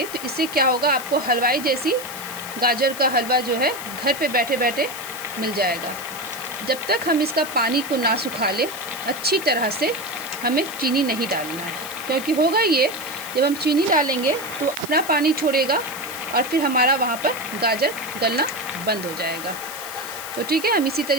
तो इससे क्या होगा, आपको हलवाई जैसी गाजर का हलवा जो है घर पे बैठे बैठे मिल जाएगा। जब तक हम इसका पानी को ना सुखा ले अच्छी तरह से, हमें चीनी नहीं डालना है। क्योंकि होगा ये, जब हम चीनी डालेंगे तो अपना पानी छोड़ेगा और फिर हमारा वहाँ पर गाजर गलना बंद हो जाएगा। तो ठीक है, हम इसी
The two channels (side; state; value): left; noise; hiss, 11 dB below the sound